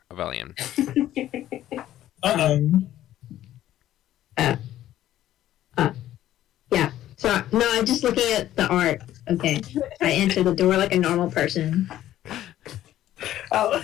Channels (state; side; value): quieter; right; 12.9 dB